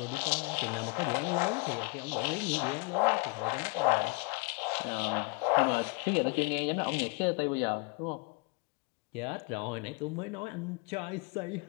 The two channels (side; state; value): right; quieter; 30.8 dB